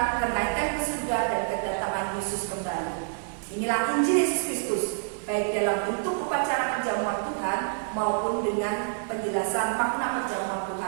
kenaikan ke surga, dan kedatangan Yesus kembali. Inilah Injil Yesus Kristus, baik dalam bentuk upacara perjamuan Tuhan maupun dengan penjelasan makna perjamuan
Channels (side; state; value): left; silent; digital silence